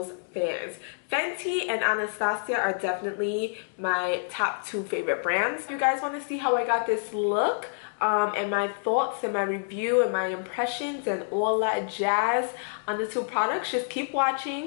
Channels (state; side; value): silent; right; digital silence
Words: fan. Fenty and Anastasia are definitely my top two favorite brands. If you guys want to see how I got this look, and my thoughts and my review and my impressions and all that jazz on the two products, just keep